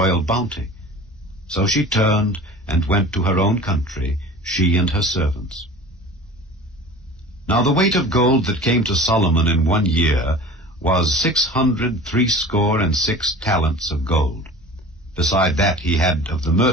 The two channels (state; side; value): normal; both; correlation 0.39